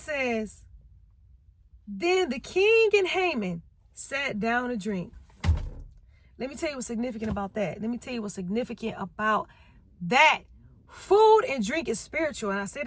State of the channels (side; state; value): both; identical; correlation 1.00